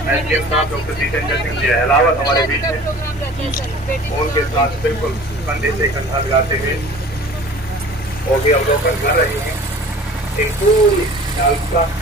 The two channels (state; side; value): normal; both; correlation 0.44